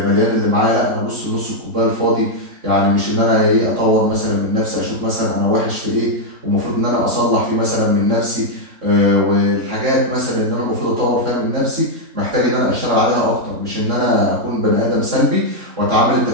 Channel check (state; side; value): late; left; 3.6 ms